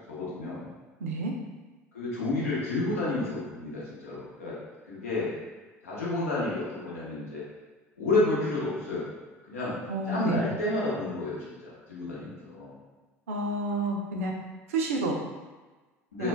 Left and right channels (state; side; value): normal; both; correlation 0.31